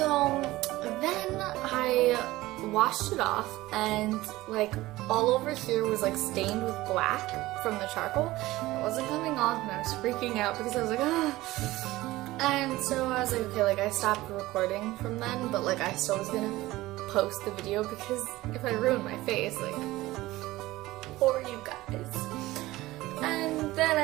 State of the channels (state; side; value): quieter; left; 18.0 dB